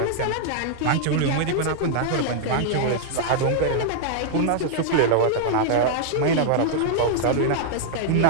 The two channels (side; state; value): both; different; correlation -0.01